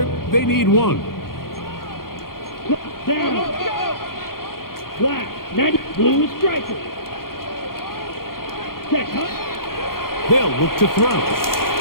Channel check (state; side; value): late; right; 0.92 ms